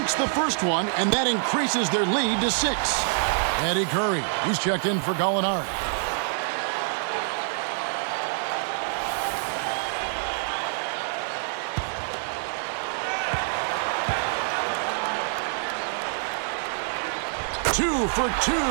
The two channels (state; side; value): silent; left; 61 dB below the other